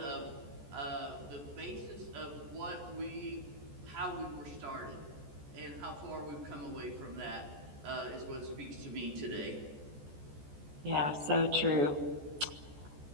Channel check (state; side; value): late; left; 14 ms